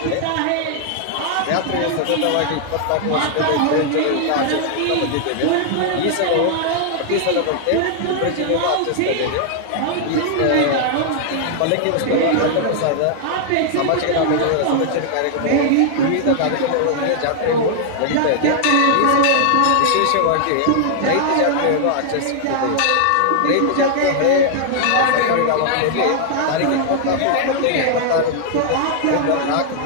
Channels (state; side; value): different; both; correlation -0.01